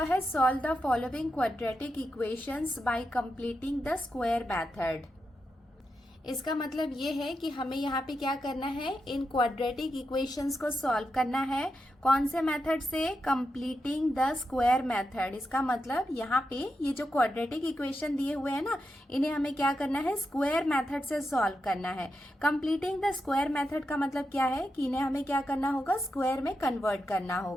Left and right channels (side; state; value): both; normal; correlation 0.87